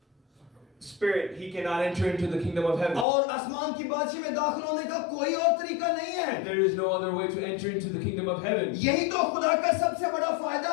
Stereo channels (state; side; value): drops out; right; at 3.1 s